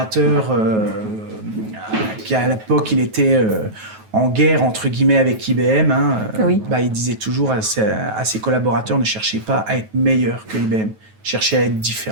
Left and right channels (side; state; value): left; late; 9.3 ms